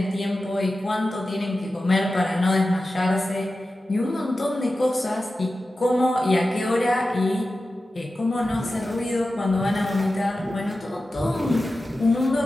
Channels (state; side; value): normal; both; correlation 0.93